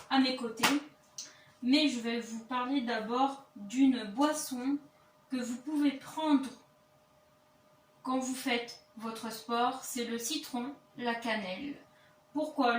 à mes côtés. Mais je vais vous parler d'abord d'une boisson que vous pouvez prendre quand vous faites votre sport. C'est le citron, la cannelle. Pourquoi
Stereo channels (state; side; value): identical; both; correlation 1.00